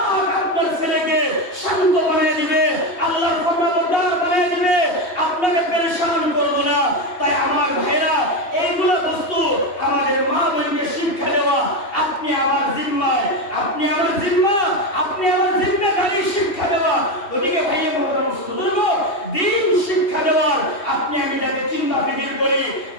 আপনার ছেলেকে শান্ত বানিয়ে দিবে, আল্লাহর ফরমাবরদার বানিয়ে দিবে, আপনাকে পেরেশান করব না। তাই আমার ভাইরা এইগুলো বস্তু আমাদের মা বোনকে শিক্ষা দেওয়া আপনি আমার জিম্মায়, আপনি আমার জিম্মা, আপনি আমার জিম্মেদারি শিক্ষা দেওয়া। ওদিকে ভাইয়া মুহতারাম বুজুর্গ দিন শিক্ষা দেওয়ার আপনি আমি যাতে চিন্তা ফিকির করি।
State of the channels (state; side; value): late; right; 2.8 ms